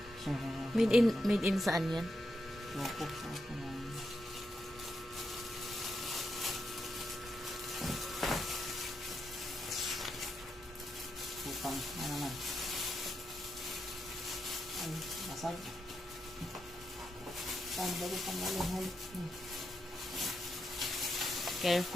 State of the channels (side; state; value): both; normal; correlation 0.84